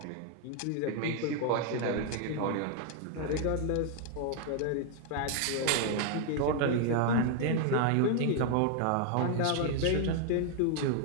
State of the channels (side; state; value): both; different; correlation 0.00